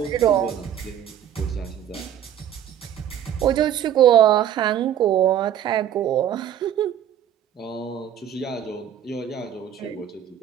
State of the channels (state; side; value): quieter; left; 10.1 dB